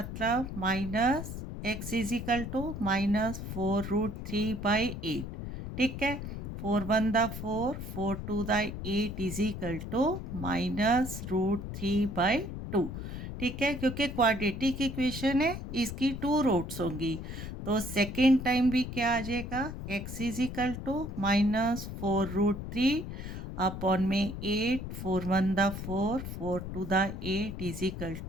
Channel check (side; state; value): left; noise; rumble, 7 dB below the sound